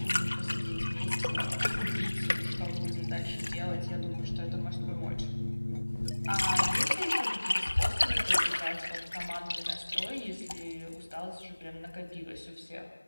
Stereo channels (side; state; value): both; inverted; correlation -1.00